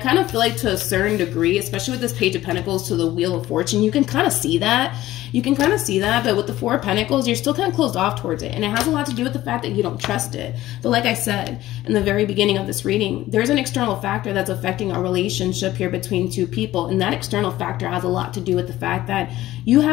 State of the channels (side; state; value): right; quieter; 15.4 dB